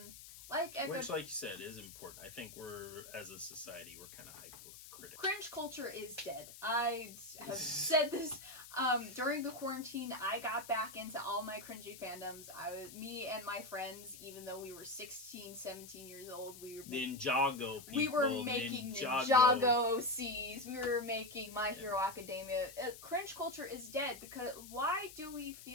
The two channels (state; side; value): noise; left; hiss, 15 dB below the sound